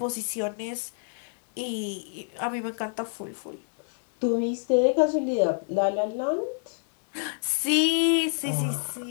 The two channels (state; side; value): silent; right; 60 dB below the other